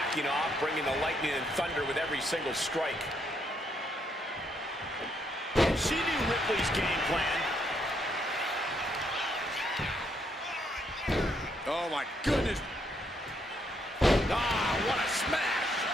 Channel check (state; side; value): normal; both; correlation 0.74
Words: off, bringing the lightning and thunder with every single strike. And she knew Ripley's game plan. Oh, my goodness. Ah, what a smash!